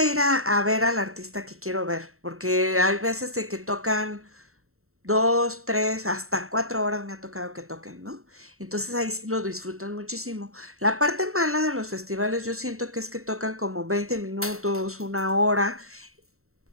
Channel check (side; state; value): left; late; 0.63 ms